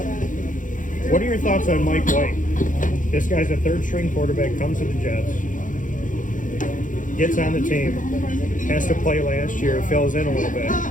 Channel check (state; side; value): late; right; 0.38 ms